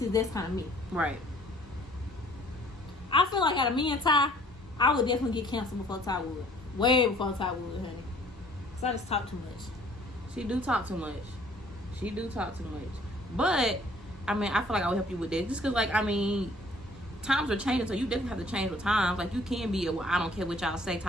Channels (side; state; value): both; normal; correlation 0.56